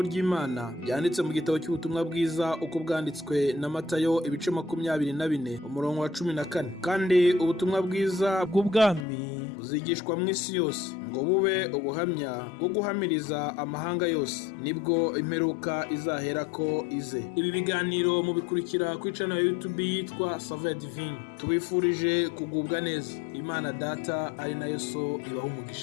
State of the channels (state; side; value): drops out; right; at 9.1 s